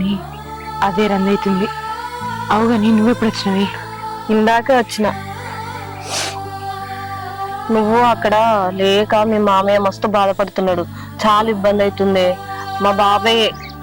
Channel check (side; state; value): both; identical; correlation 1.00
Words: అదే రందవుతుంది. అవుగాని నువ్వెప్పుడు వచ్చినవి? ఇందాకే వచ్చిన. నువ్వు అక్కడ లేక మీ మామయ్య మస్తు బాధపడుతున్నాడు, చాలా ఇబ్బంది అవుతుంది. మా బాబాయ్